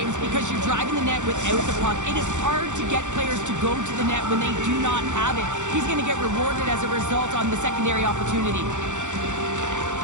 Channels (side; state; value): left; late; 0.85 ms